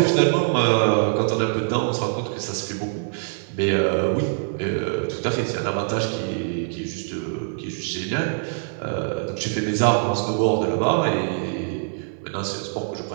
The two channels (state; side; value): silent; left; 60 dB below the other